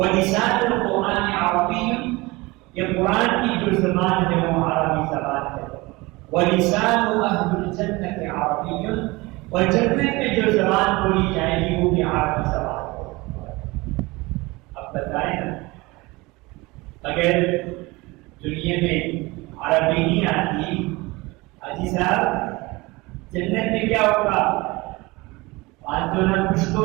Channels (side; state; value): left; quieter; 22.8 dB